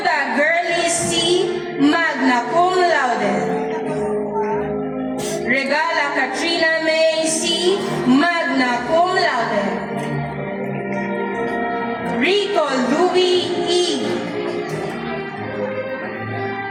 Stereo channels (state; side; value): identical; both; correlation 1.00